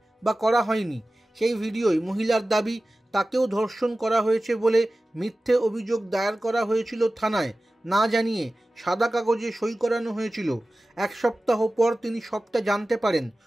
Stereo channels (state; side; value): normal; both; correlation 0.96